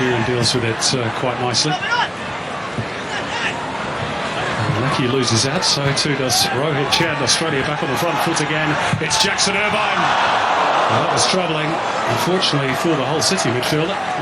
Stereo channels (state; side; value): identical; both; correlation 1.00